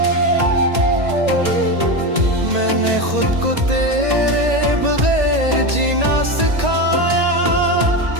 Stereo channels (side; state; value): left; late; 1.8 ms